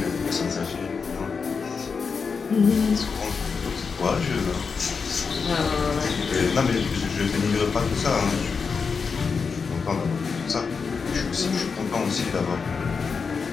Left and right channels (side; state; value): right; quieter; 5.4 dB